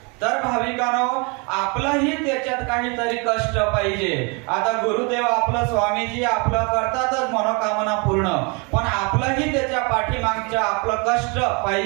तर भाविकांनो, आपलंही त्याच्यात काहीतरी कष्ट पाहिजे. आता गुरुदेव आपलं स्वामीजी आपलं करतातच मनोकामना पूर्ण, पण आपलंही त्याच्या पाठीमागच्या आपलं कष्ट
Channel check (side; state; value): left; quieter; 31.8 dB